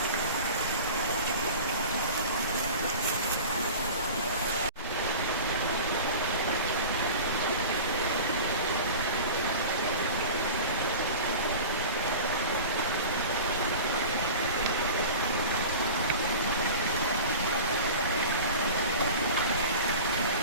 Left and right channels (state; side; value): inverted; both; correlation -0.36